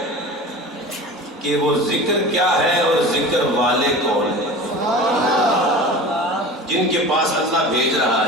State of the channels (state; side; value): normal; both; correlation 0.35